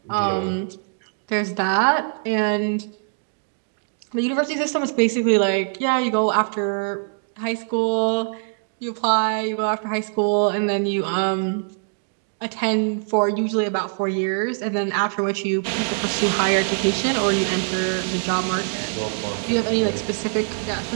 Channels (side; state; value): left; silent; digital silence